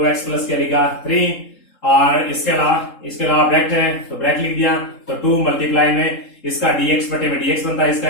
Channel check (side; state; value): right; late; 3.8 ms